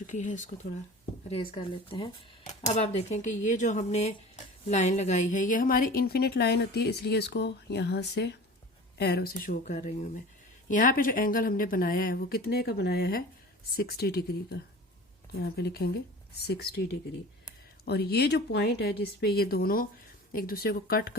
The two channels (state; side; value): normal; both; correlation 0.39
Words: है, इसको थोड़ा रेज कर लेते हैं। अब आप देखें कि ये जो हमने लाइन लगाई है ये हमारी इन्फिनिट लाइन होती है, इसलिए इसको यहाँ से एरो से शो कर रही हूँ मैं। यहाँ पे जो एंगल हमने बनाया है वो कितने का बनाया है, 60 डिग्री का। यहाँ पे लिखेंगे 60 डिग्री। और ये जो पॉइंट है जिसपे ये दोनों एक दूसरे को कट